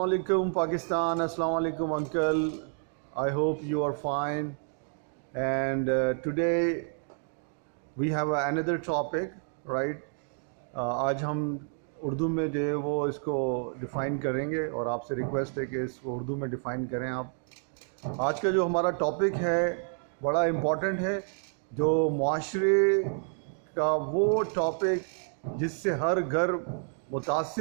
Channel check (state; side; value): silent; left; 56 dB below the other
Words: alaikum Pakistan, Assalamu alaikum uncle. I hope you are fine. And today we have another topic, right? آج ہم اردو میں جو ہے وہ اس کو ڈیفائن کریں گے اور آپ سے ریکویسٹ ہے کہ اس کو اردو میں ڈیفائن کریں آپ. آج کا جو ہمارا ٹاپک ہے بڑا امپورٹنٹ ہے، جو معاشرے کا وہ ٹاپک جس سے ہر گھر